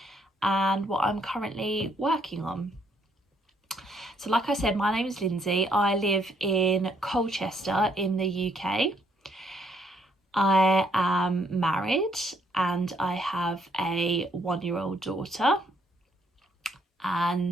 and what I'm currently working on. So like I said, my name is Lindsay. I live in Colchester in the UK. I am married and I have a 1-year-old daughter,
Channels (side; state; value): both; normal; correlation 0.70